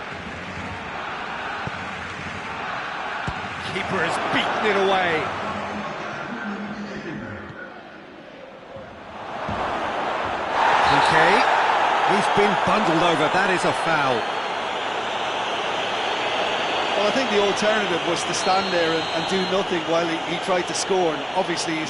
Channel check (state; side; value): identical; both; correlation 1.00